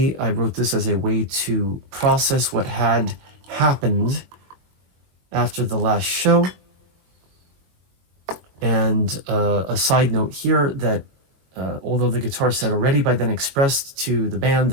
I wrote this as a way to process what had happened after the last show. And a side note here that although the guitarist had already by then expressed to the band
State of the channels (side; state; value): left; late; 21 ms